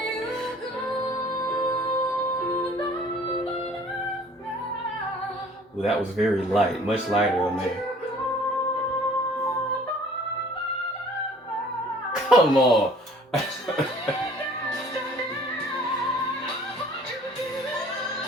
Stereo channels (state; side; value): normal; both; correlation 0.52